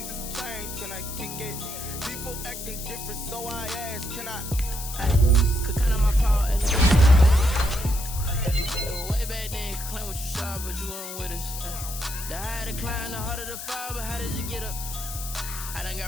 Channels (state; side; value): noise; left; hiss, 8 dB below the sound